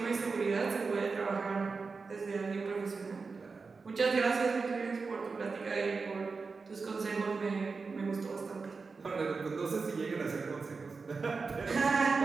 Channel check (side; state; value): left; quieter; 4.5 dB